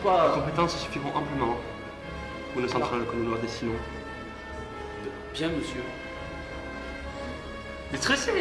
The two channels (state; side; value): identical; both; correlation 1.00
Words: Les compétences suffiront amplement pour une centrale que nous leur destinons. Bien, monsieur.